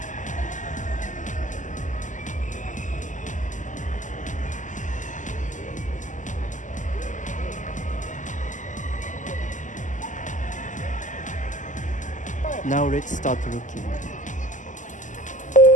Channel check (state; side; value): late; right; 0.37 ms